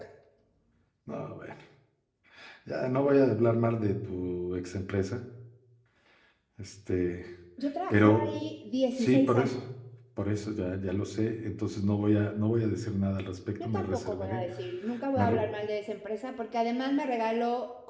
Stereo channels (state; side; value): identical; both; correlation 1.00